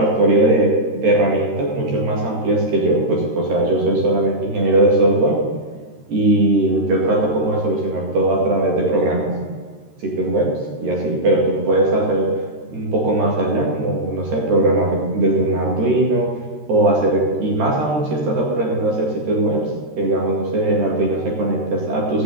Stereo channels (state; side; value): late; left; 13 ms